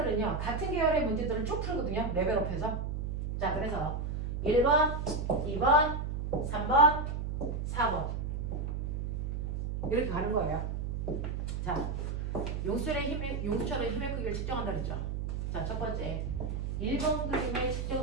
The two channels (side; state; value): right; noise; hum, 2 dB below the sound